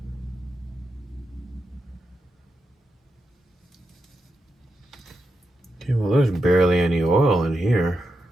Okay, well there's barely any oil in here.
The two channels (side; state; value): both; normal; correlation 0.87